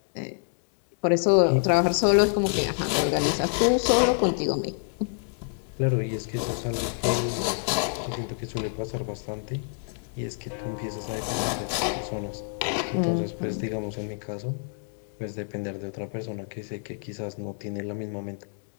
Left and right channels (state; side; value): silent; right; digital silence